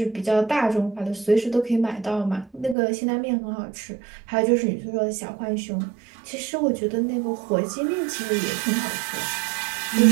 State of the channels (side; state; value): left; drops out; at 2.8 s